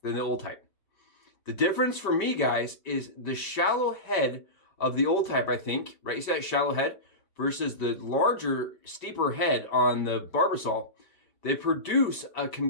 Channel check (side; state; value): right; late; 5.1 ms